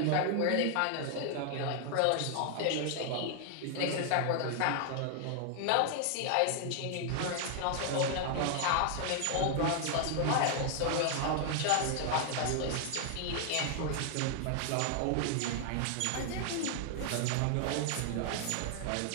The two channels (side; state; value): both; different; correlation 0.00